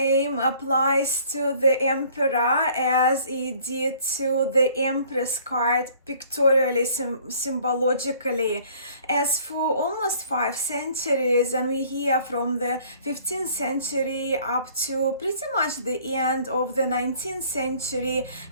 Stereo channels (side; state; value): both; inverted; correlation -0.55